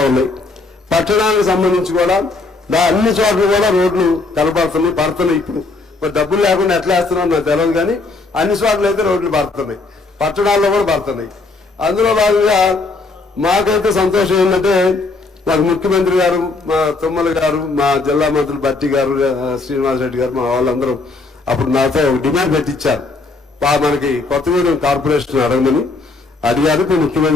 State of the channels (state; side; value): quieter; right; 3.6 dB